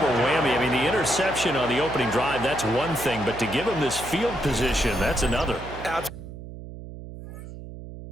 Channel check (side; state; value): right; noise; hum, 13 dB below the sound